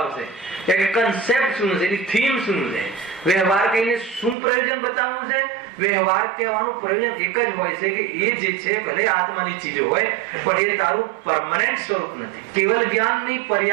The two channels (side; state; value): left; drops out; at 4.4 s